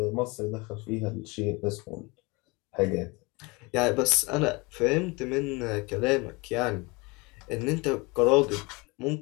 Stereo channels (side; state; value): right; quieter; 26.3 dB